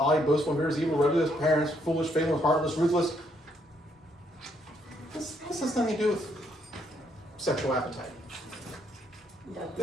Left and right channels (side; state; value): both; normal; correlation 0.72